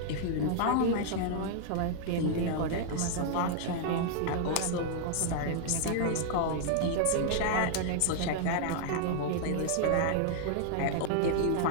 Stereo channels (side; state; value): both; different; correlation -0.01